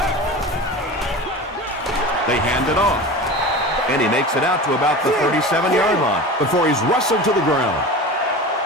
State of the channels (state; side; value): normal; both; correlation 0.32